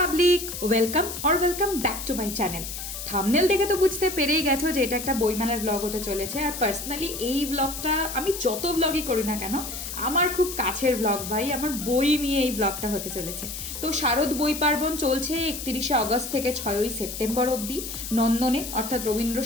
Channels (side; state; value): left; noise; hiss, 7 dB below the sound